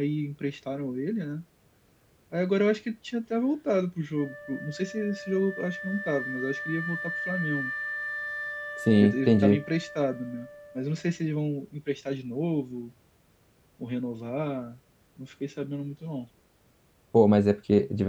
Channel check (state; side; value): identical; both; correlation 1.00